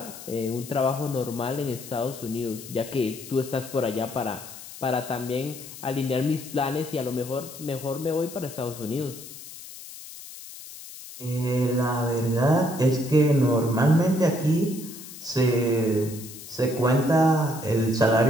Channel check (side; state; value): left; noise; hiss, 14 dB below the sound